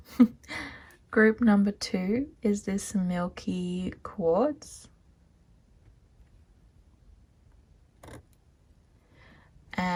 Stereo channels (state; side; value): identical; both; correlation 1.00